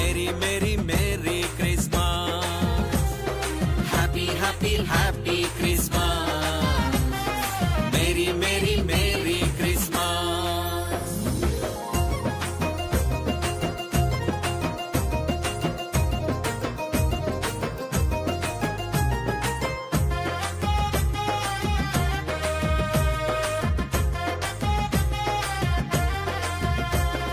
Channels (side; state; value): both; identical; correlation 1.00